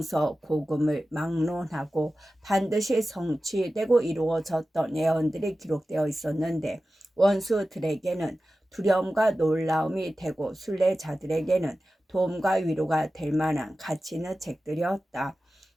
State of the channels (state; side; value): normal; both; correlation 0.94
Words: 막론하고 반드시 성취되고 이루어졌던 예언들이 기록되어 있었는데 원수들에게는 두려움과 놀라움이 되고 순례자들에게는 도움과 위로가 될 만한 가치 있는 책들이었다.